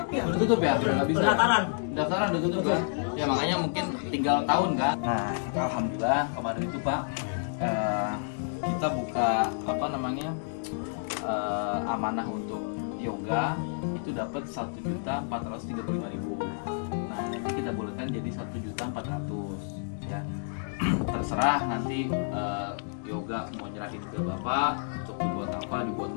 ya. Udah tutup ya? Udah nggak bisa. Pendaftaran udah tutup ya? Ya makanya mungkin tinggal tahun kan. Nah, alhamdulillah kemarin itu Pak, kita buka amanah untuk yoga itu dapat 1.435.000. Nah, nanti kita bolehkan jadi 1.400.000 ya. Terserah nanti yoga mau nyerahin ke bapak untuk dibuat apa, dibuat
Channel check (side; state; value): right; silent; digital silence